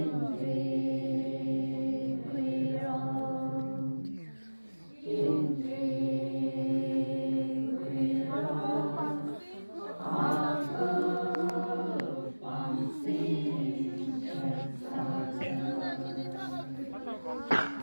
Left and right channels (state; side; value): inverted; both; correlation -1.00